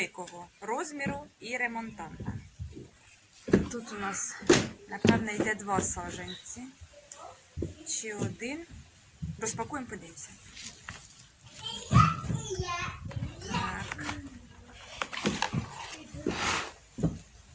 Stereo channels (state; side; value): identical; both; correlation 1.00